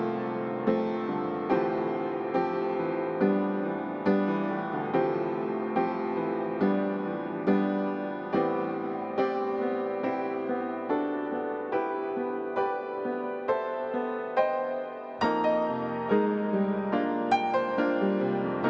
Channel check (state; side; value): identical; both; correlation 1.00